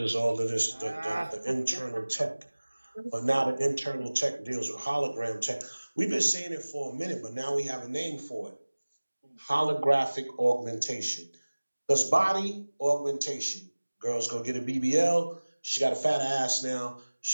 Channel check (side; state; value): both; inverted; correlation -1.00